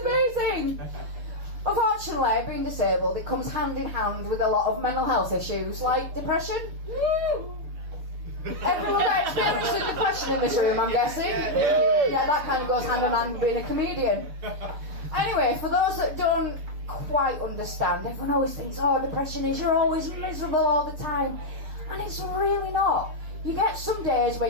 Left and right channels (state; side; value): late; left; 6.8 ms